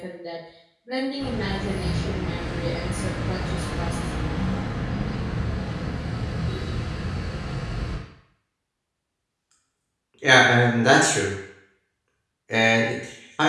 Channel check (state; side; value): identical; both; correlation 1.00